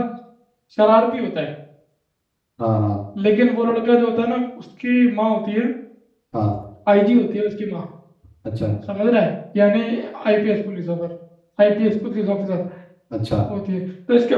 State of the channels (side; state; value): both; identical; correlation 1.00